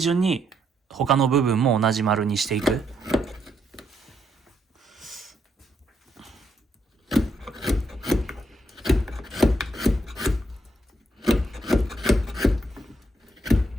に、他の部分も同じ丸にしていく。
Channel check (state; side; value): normal; both; correlation 0.76